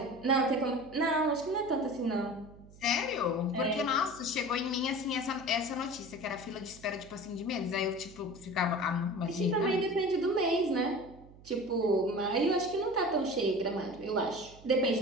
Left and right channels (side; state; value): right; noise; hum, 21 dB below the sound